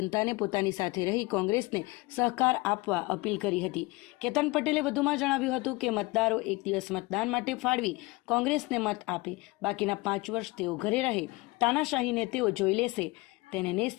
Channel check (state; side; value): quieter; right; 23.2 dB